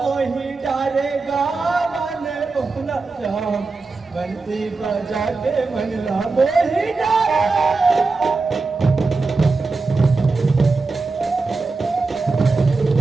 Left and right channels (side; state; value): left; quieter; 3.9 dB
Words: डारेगा मन मोहना श्याम बंसी बजा के मनला मोही डारे